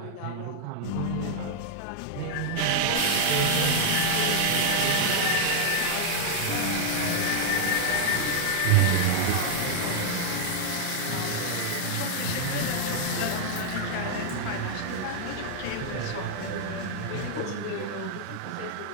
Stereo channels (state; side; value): different; both; correlation 0.00